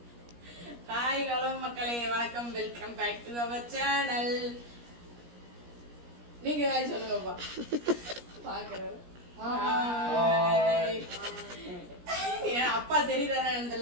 ஹாய் ஹலோ மக்களே, வணக்கம், welcome back to our channel. நீங்க ஹாய் சொல்லுங்கப்பா. பாக்குறாரு. அப்பா தெரியுதானே?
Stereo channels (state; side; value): late; left; 17 ms